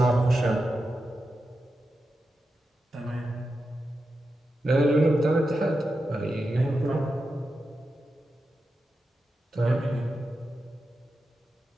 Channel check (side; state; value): both; normal; correlation 0.90